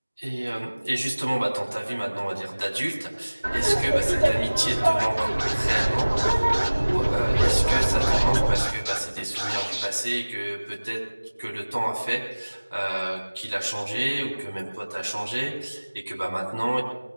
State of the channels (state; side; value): inverted; both; correlation -1.00